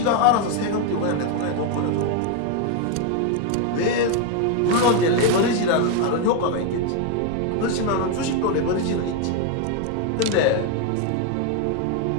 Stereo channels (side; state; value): both; different; correlation 0.01